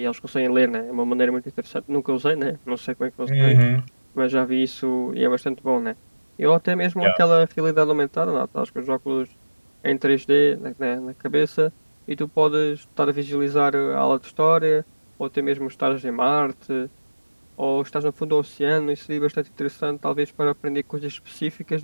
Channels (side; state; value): both; inverted; correlation -1.00